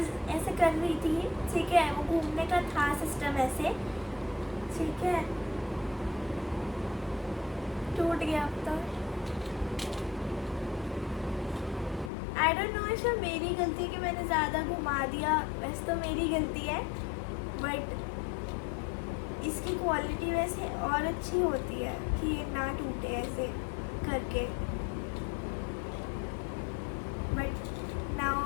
ऐसे कर रही थी, ठीक है, वो घूमने का था सिस्टम ऐसे, ठीक है, टूट गया अब तो। आई डोंट नो इसमें मेरी गलती कि मैंने ज़्यादा घुमा दिया, वैसे तो मेरी गलती है, बट इसकी क्वालिटी वैसे और अच्छी होती है कि ये ना टूटे ऐसे करके, बट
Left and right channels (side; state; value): right; drops out; at 12.1 s